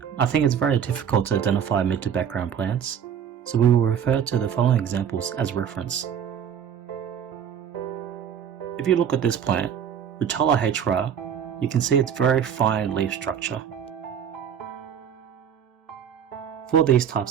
I think it's very difficult to identify mid to background plants, so we will refer to the following examples as reference. If you look at this plant, Rotella hra, you can see its very fine leaf structure. For these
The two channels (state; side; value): quieter; left; 8.5 dB